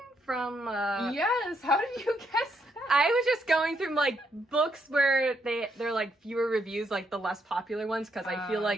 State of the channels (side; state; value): both; normal; correlation 0.76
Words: from Yes, how did you guess that? I was just going through like books where they're like fewer reviews, like the less popular ones, because I feel